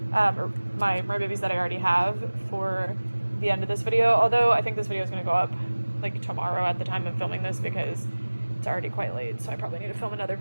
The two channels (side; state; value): both; inverted; correlation -1.00